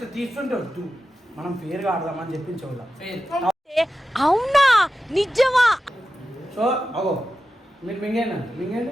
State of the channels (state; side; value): normal; both; correlation 0.92